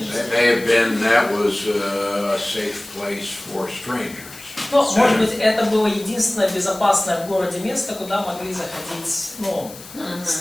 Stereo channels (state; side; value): noise; left; hiss, 17 dB below the sound